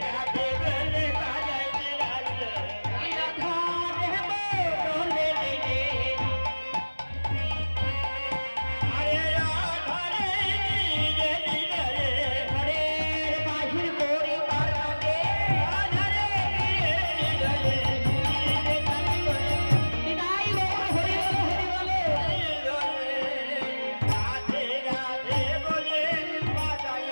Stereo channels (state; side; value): inverted; both; correlation -1.00